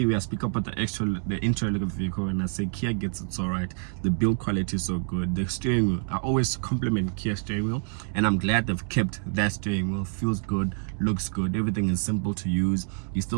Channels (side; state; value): left; silent; 59 dB below the other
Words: where I speak about the interior look of the vehicle, and I say Kia gets it so right. The build quality is so good. The steering wheel, I always compliment Kia steering wheel, and I'm glad they've kept that steering wheel. Feels good, looks good, everything is simple to use. You